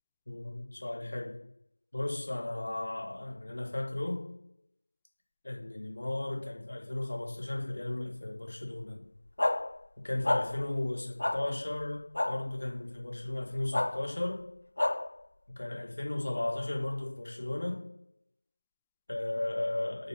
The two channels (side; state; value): both; inverted; correlation -1.00